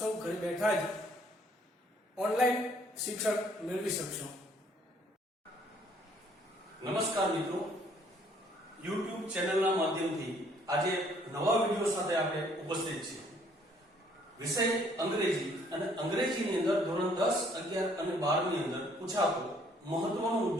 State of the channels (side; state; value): both; normal; correlation 0.62